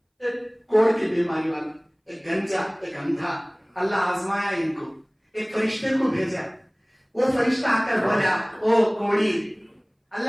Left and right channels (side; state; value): both; identical; correlation 1.00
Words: एक कोढ़ की बीमारी वाला, एक गंजा, एक अंधा। अल्लाह आजमाया इनको, एक फरिश्ते को भेजा। वो फरिश्ता आकर बोला, ओ कोढ़ी,